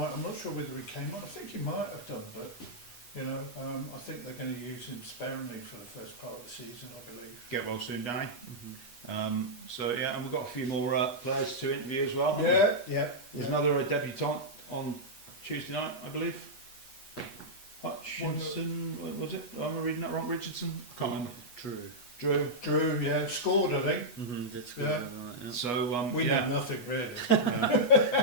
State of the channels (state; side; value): late; right; 8.2 ms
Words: I'm not sure whether he came on. I think he might have done, but I think they're going to use him sparingly for the first part of the season, I believe. Get well soon, Danny. And we've got a few more players to interview as well. There's another debutant on Tuesday night, I believe. Hutchinson, was it? Am I reading that wrong? Richardson? Can't remember. Drew, scored, I think. Did score. So we know nothing really.